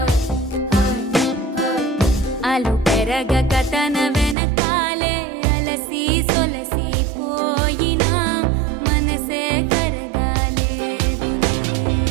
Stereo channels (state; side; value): drops out; left; at 4.4 s